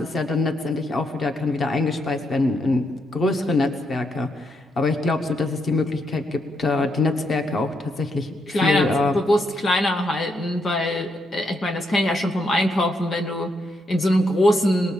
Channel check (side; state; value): both; normal; correlation 0.79